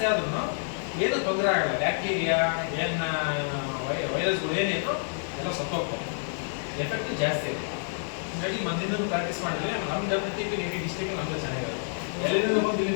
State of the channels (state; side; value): silent; right; 56 dB below the other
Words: ಆದ್ರೂ ಏನೂ ತೊಂದರೆ ಆಗಲ್ಲ. ಬ್ಯಾಕ್ಟೀರಿಯಾ ಏನು ವೈರಸ್ಗಳು ಏನಿದ್ರು ಎಲ್ಲ ಸತ್ತೋಗ್ತವೆ, ಎಫೆಕ್ಟ್ ಜಾಸ್ತಿ ಇದೆ. ಹೀಗಾಗಿ ಮೊದಲಿಂದ ಪ್ರಾಕ್ಟೀಸ್ ಮಾಡಿದ್ರೆ ನಮ್ಮ WTP ಡಿಸ್ಟ್ರಿಕ್ಟ್ ನಮ್ದು ಚೆನ್ನಾಗಿರುತ್ತೆ. ಎಲ್ಲಿಂದ ಬಂದು ಇಲ್ಲಿ